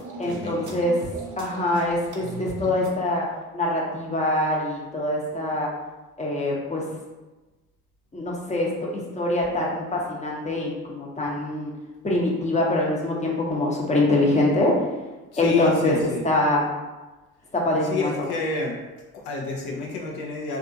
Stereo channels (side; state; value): both; normal; correlation 0.33